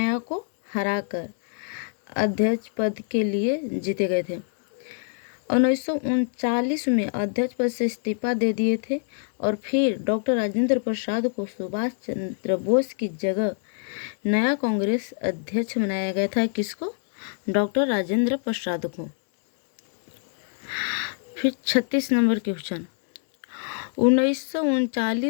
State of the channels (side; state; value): right; silent; digital silence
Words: को हराकर अध्यक्ष पद के लिए जीते गए थे। 1939 में अध्यक्ष पद से इस्तीफा दे दिए थे और फिर डॉक्टर राजेंद्र प्रसाद को सुभाष चंद्र बोस की जगह नया कांग्रेस अध्यक्ष बनाया गया था। किसको? डॉक्टर राजेंद्र प्रसाद को। फिर 36 नंबर क्वेश्चन,